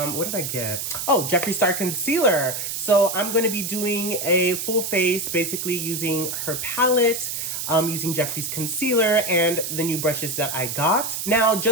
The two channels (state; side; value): noise; right; hiss, 4 dB below the sound